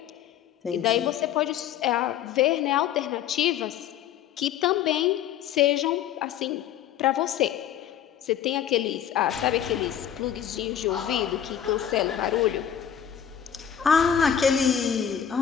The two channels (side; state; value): right; quieter; 9.5 dB